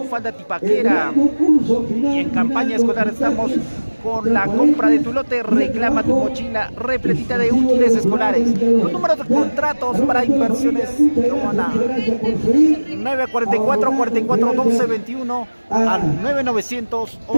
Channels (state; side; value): inverted; both; correlation -1.00